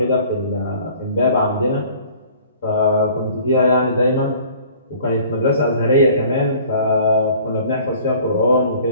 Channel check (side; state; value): both; inverted; correlation -0.51